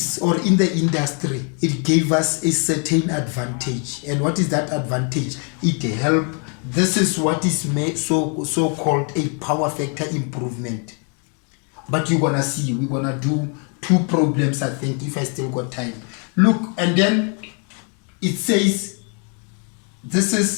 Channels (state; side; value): quieter; right; 38.5 dB